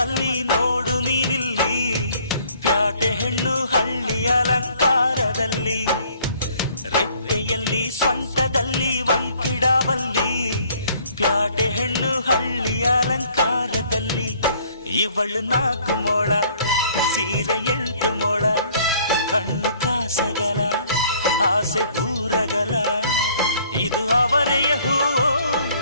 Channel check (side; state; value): both; inverted; correlation -0.59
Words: ನೋಡು ನೀನಿಲ್ಲಿ, ಪ್ಯಾಟೆ ಹೆಣ್ಣು ಹಳ್ಳಿ ಅಲಂಕಾರದಲ್ಲಿ, ರೆಟ್ಟೆಯಲ್ಲಿ ಸೊಂಟದಲ್ಲಿ ವಂಕಿಡಬಲ್ಲಿ, ಪ್ಯಾಟೆ ಹೆಣ್ಣು ಹಳ್ಳಿ ಅಲಂಕಾರದಲ್ಲಿ. ಇವಳು 4 ಮೊಳ ಸೀರೆ 8 ಮೊಳ, ಕಣ್ಣು ಕಾಸಗಲ ಆಸೆ ಊರಗಲ, ಇದು ಅವರೆಯ ಹೂವೋ